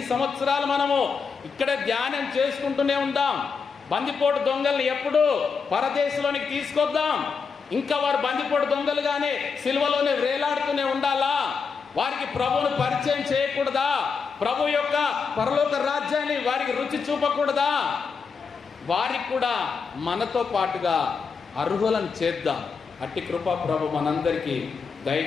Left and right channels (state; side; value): quieter; right; 5.5 dB